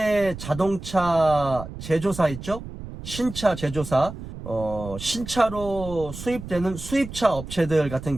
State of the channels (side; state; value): right; noise; rumble, 11 dB below the sound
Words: 자동차 제조사 있죠? 신차 제조사, 신차로 수입되는 수입차 업체들 같은